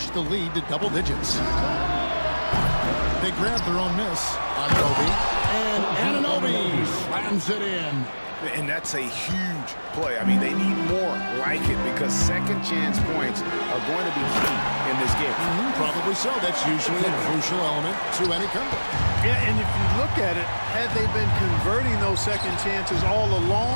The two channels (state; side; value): inverted; both; correlation -1.00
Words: the lead to double digits. They grabbed their own miss. Anunoby. And Anunoby slams it in. And that's a huge play. I mean, they need more like it because second chance points are going to be key in this game. Probably so. That's usually a crucial element to any comeback. Yeah, and if you look at it, had they been converting those second chances all